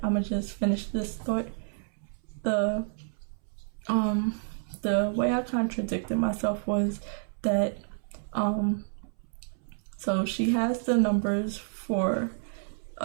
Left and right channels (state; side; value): silent; left; 58 dB below the other